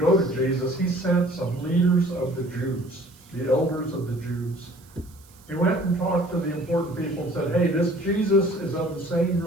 to Jesus. He sent some leaders of the Jews, the elders of the Jews. He went and talked to the important people and said, hey, this Jesus is of the same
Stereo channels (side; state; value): right; noise; hiss, 27 dB below the sound